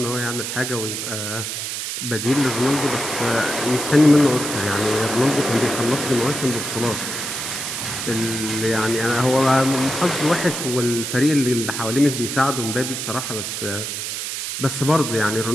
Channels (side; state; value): right; noise; hiss, 4 dB below the sound